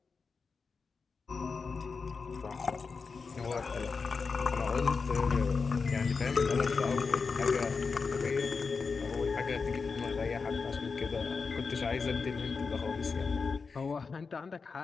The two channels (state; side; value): quieter; right; 4.9 dB